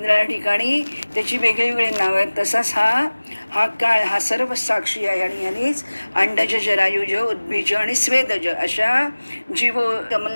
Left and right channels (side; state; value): both; inverted; correlation -1.00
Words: ठिकाणी त्याची वेगळी नावं आहेत, तसाच हा काळ हा सर्व साक्षी आहे. आणि ह्यानेच अंडज जरायुज उद्भिज आणि स्वेदज अशा जीव